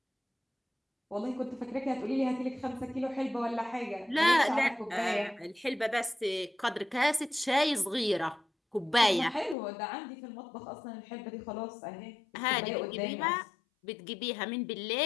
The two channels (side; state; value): right; drops out; at 9.6 s